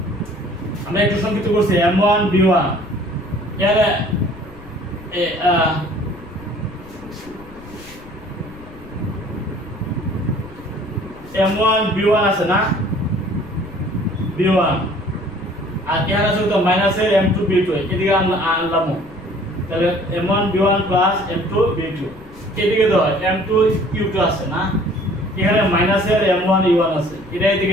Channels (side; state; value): left; noise; rumble, 19 dB below the sound